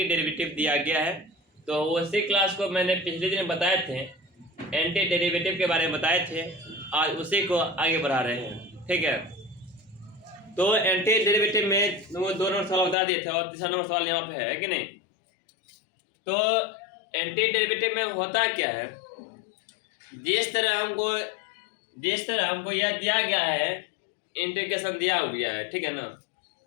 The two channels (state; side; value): drops out; right; at 13.0 s